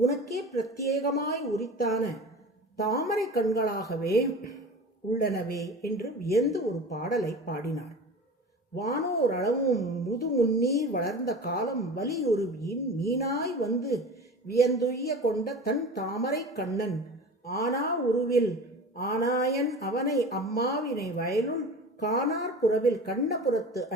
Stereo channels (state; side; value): normal; both; correlation 0.35